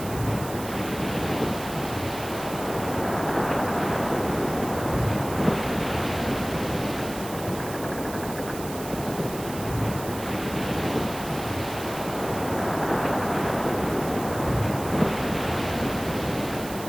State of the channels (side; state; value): right; noise; hiss, 12 dB below the sound